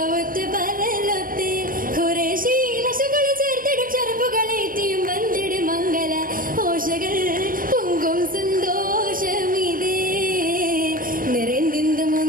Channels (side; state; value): left; late; 0.41 ms